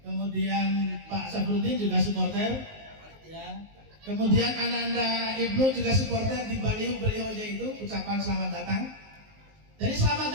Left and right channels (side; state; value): left; late; 19 ms